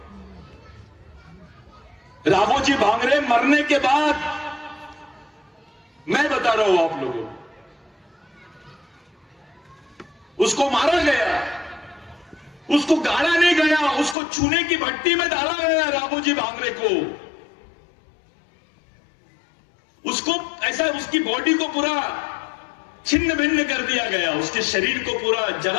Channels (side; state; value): right; drops out; at 14.2 s